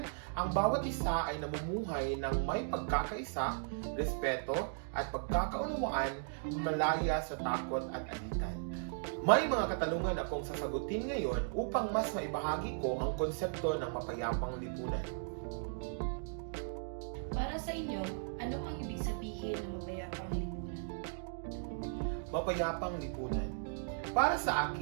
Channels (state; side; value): silent; left; digital silence